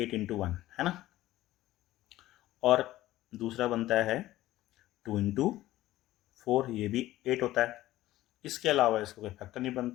× 1, है ना, और दूसरा बनता है 2 × 4, ये भी 8 होता है, इसके अलावा इसको कोई फैक्टर नहीं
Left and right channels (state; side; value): quieter; right; 15.6 dB